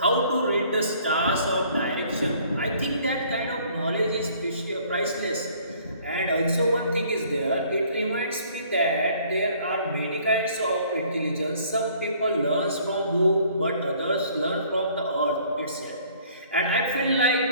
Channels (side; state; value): both; inverted; correlation -0.57